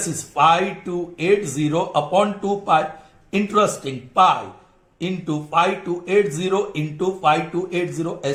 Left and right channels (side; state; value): both; identical; correlation 1.00